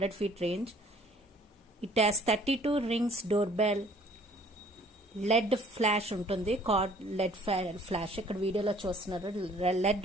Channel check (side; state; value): both; normal; correlation 0.56